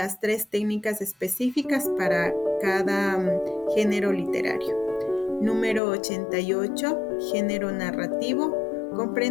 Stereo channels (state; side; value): drops out; right; at 5.8 s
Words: 3 técnicas específicas para cada género literario. Número 88, género narrativo,